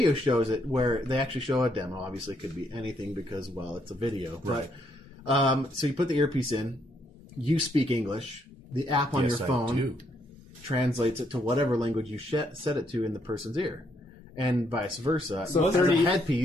shows it where they actually show a demo. Obviously, it could be anything because, well, it's a video. Right. But, so you put the earpiece in. You speak English. The app on your phone translates it to whatever language you set it to in the person's ear. and vice versa. So As a 30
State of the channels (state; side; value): normal; both; correlation 0.73